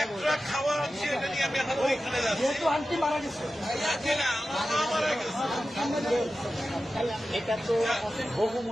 একটা খাওয়া আনছি, এটা নিয়ে আমি এখন ওইখানে যাচ্ছি। আন্টি মারা গেছে, না, আমার মা মারা গেছে। এটা তো বহু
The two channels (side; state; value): both; normal; correlation 0.93